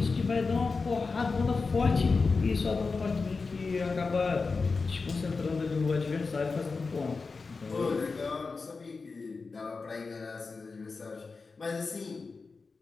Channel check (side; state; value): right; quieter; 4.3 dB